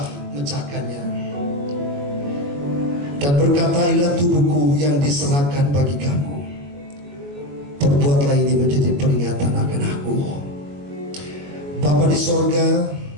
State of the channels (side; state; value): left; late; 21 ms